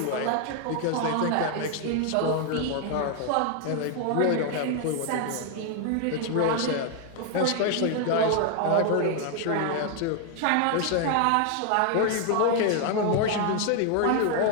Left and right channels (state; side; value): different; both; correlation 0.01